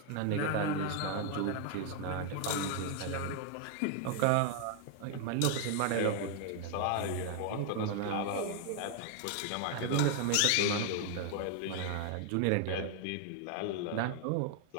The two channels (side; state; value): both; different; correlation 0.00